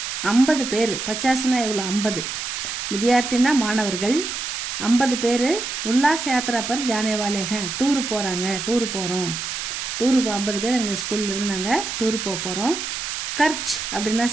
50 பேர், 50னா எவ்வளோ 50 வித்யார்த்தின்னா மாணவர்கள், 50 பேர் உல்லாஸ் யாத்ரா பர் ஜானே வாலே ஹேன், டூரு போகிறோம். 50 பேர் எங்கள் ஸ்கூல்லேருந்து நாங்கள் டூரு போகிறோம். கர்ச் அப்படின்னா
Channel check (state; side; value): noise; right; hiss, 4 dB below the sound